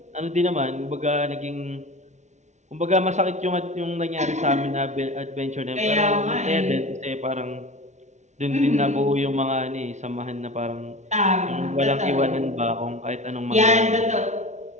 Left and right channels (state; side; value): late; left; 0.34 ms